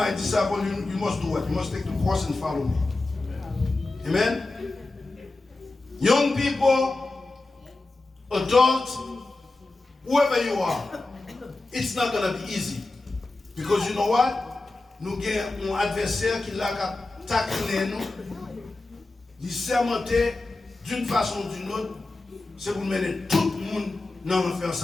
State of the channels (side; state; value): right; quieter; 3.1 dB